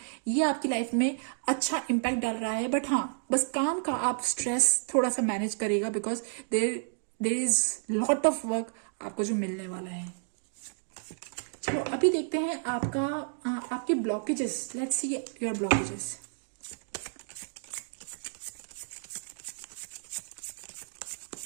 ये आपकी लाइफ में अच्छा इम्पैक्ट डाल रहा है. बट हाँ, बस काम का आप स्ट्रेस थोड़ा सा मैनेज करेगा, because there is lot of work आपको जो मिलने वाला है. चलो अभी देखते हैं आपके blockages. Let's see your blockages.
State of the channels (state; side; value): silent; left; digital silence